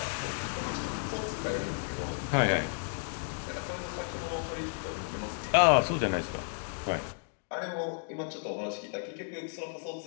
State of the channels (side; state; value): right; silent; 56 dB below the other